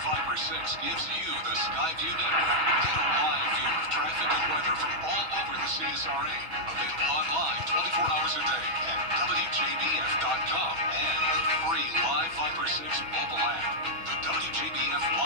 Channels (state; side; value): late; left; 6.1 ms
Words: Viper 6 gives you the Skyview Network. Get a live view of traffic and weather from all over the CSRA. Available online 24 hours a day at WJBF.com and the free Live Viper 6 mobile app. The WJBF